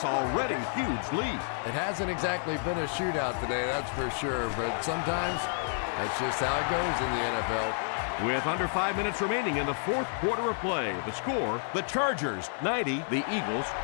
already huge lead. It hasn't exactly been a shootout today, that's for sure. But sometimes that's just how it goes in the NFL. With under 5 minutes remaining in the 4th quarter of play, the score, the Chargers 90, the Eagles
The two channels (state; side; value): silent; right; 58 dB below the other